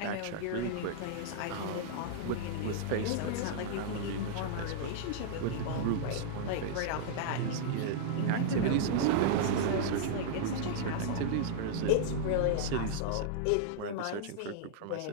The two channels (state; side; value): different; both; correlation -0.01